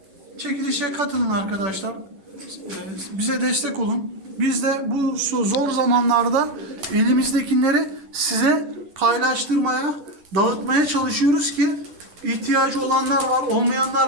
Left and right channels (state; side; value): late; left; 10 ms